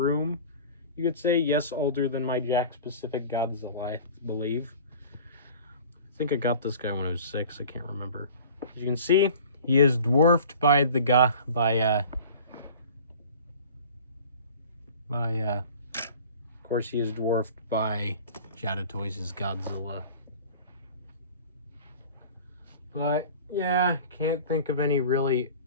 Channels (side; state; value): both; inverted; correlation -0.43